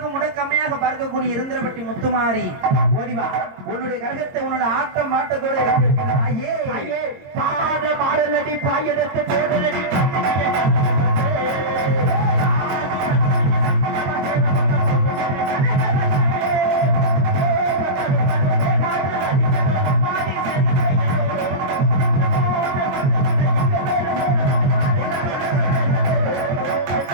முடக்கம்மையாக பார்க்கக்கூடிய இருந்தரப்பட்டி முத்துமாரி, ஓடிவா. உன்னுடைய கரகத்தை உன்னோட ஆட்டம் மாட்டத்தோடு பாத மாறலடி பாயடத்து தேவனடி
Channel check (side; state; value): left; late; 22 ms